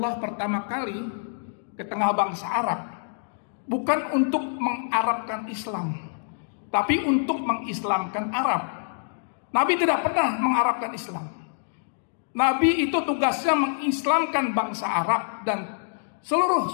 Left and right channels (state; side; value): silent; right; digital silence